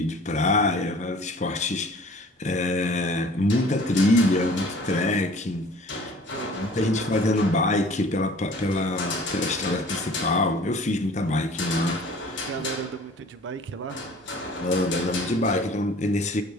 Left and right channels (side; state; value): both; normal; correlation 0.48